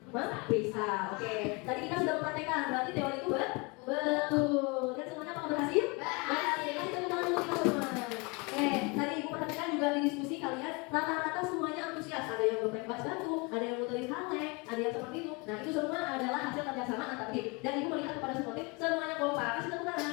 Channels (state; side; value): quieter; right; 28.7 dB